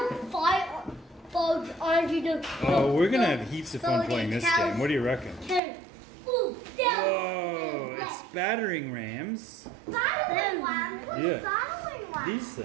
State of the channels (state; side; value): drops out; left; at 5.6 s